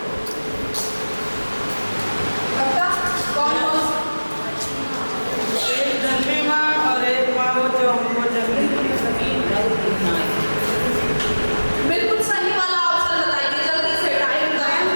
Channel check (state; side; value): inverted; both; correlation -1.00